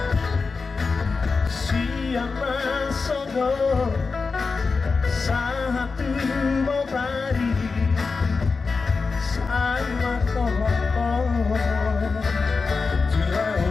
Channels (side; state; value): right; quieter; 4.5 dB